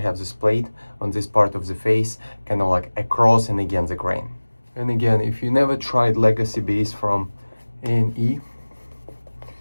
this plate on this part of the face, kind of like across and against the grain. And again, if you never tried legacy base from A&E,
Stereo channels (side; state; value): both; inverted; correlation -1.00